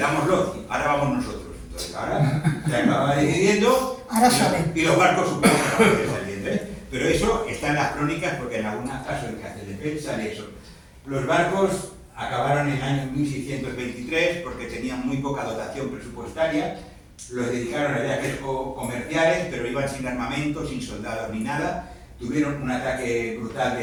ahora vamos nosotros. Entonces, ahora se acaba decidiendo, y los barcos supongo que van a ir saliendo, Pero eso está en las crónicas, porque en algunos casos en Castelldefels sale eso. Los barcos acabaron en el año 1623 porque tenían muy poca dotación presupuestaria, los dedicaron a viajes comerciales, pero iban sin armamento, sin soldados ni nada. Tuvieron un ataque brutal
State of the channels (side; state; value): both; identical; correlation 1.00